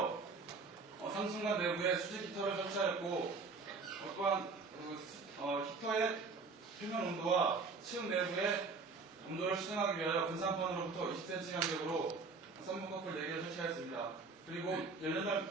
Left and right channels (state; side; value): quieter; left; 4.3 dB